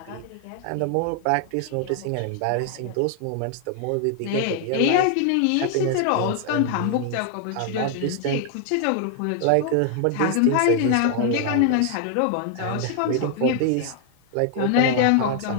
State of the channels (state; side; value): different; both; correlation 0.00